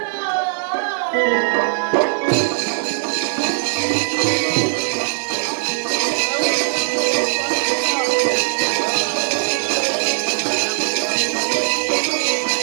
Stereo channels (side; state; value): left; silent; digital silence